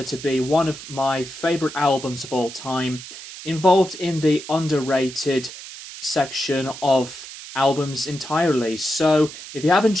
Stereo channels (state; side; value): noise; right; hiss, 13 dB below the sound